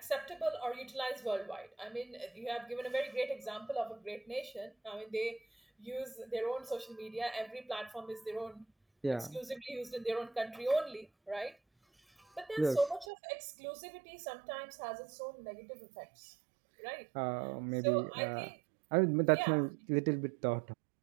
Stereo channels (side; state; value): left; drops out; at 13.1 s